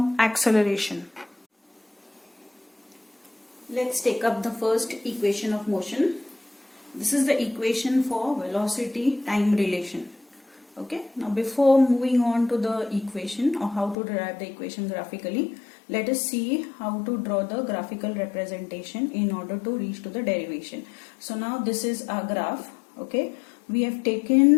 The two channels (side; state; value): right; drops out; at 14.0 s